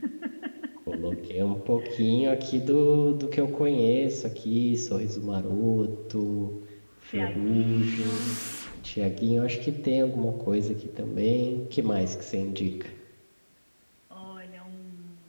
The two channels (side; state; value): both; inverted; correlation -1.00